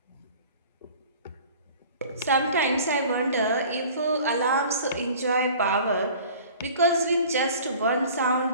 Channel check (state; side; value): inverted; both; correlation -0.46